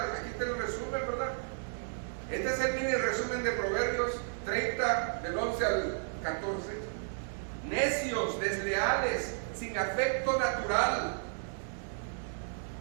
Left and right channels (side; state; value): left; silent; digital silence